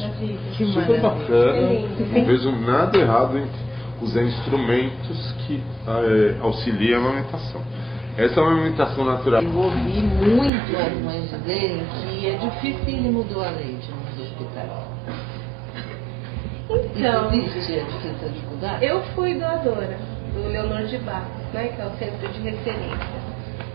Que Super maravilha. bacana. Não vejo nada errado em usar instrumentos que auxiliam a amamentação. Essa é uma amamentação natural. Eu ouvi muito as mães dizerem que é dificílimo doar leite nos hospitais. Então, Isso existe essa dificuldade? eu fui doadora do Leonor de Barros, né, que é o centro de referência.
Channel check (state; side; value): drops out; left; at 10.5 s